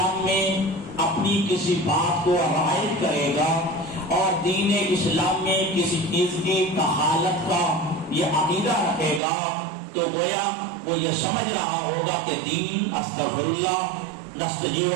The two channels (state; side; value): drops out; left; at 9.2 s